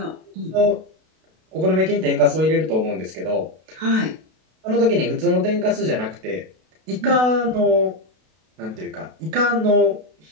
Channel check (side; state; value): left; late; 32 ms